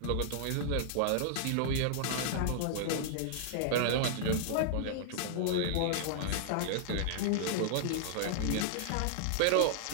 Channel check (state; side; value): different; both; correlation -0.01